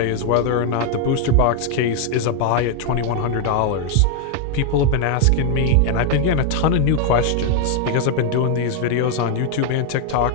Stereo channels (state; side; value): different; both; correlation 0.00